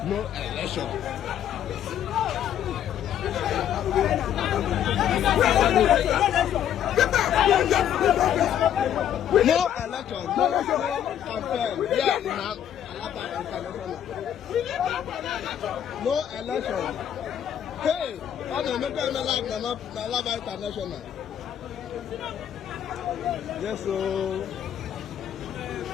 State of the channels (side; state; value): right; quieter; 10.1 dB